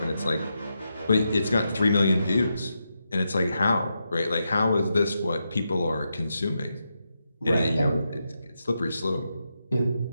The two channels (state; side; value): inverted; both; correlation -0.85